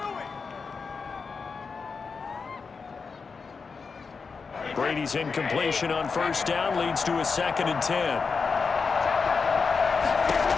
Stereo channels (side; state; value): right; quieter; 5.0 dB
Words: Brady's incompletion on 1st down leads to a 2nd and 10.